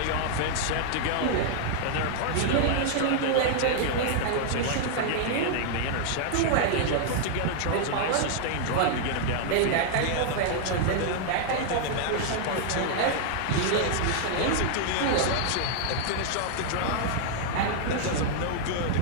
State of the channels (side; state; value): both; different; correlation 0.00